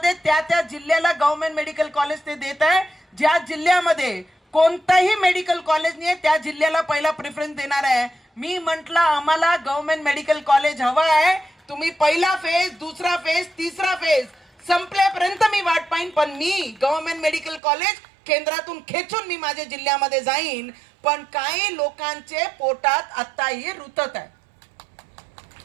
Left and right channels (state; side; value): drops out; left; at 17.6 s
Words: त्या जिल्ह्याला गव्हर्नमेंट मेडिकल कॉलेज ते देत आहे. ज्या जिल्ह्यामध्ये कोणताही मेडिकल कॉलेज नाही त्या जिल्ह्याला पहिला प्रेफरन्स देणार आहे. मी म्हटलं आम्हाला गव्हर्नमेंट मेडिकल कॉलेज हवं आहे, तुम्ही पहिला फेज, दुसरा फेज, तिसरा फेज संपल्यापर्यंत मी वाट पाहिन, पण मी गव्हर्नमेंट मेडिकल कॉलेज केंद्रातून खेचून मी माझ्या जिल्ह्यामध्ये जाईन. पण काही लोकांचे पोटात आताही रुतत आहे.